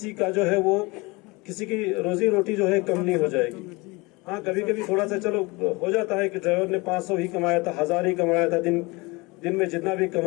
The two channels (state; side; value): quieter; right; 25.1 dB